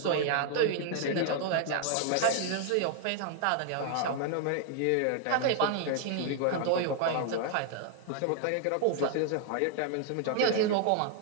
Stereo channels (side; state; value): both; different; correlation 0.00